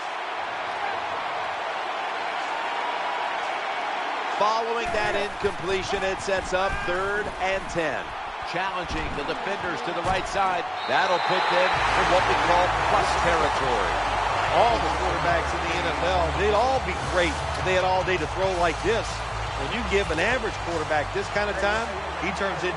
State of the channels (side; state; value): both; identical; correlation 1.00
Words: Following that incompletion, it sets up 3rd and 10. Challenging the defenders to the right side. That'll put them in what we call plus territory. All the quarterbacks in the NFL, they'd all be great if they had all day to throw like this. When you give an average quarterback this kind of time, he turns